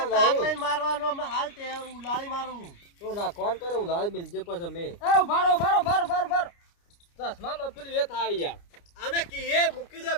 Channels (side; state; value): right; late; 29 ms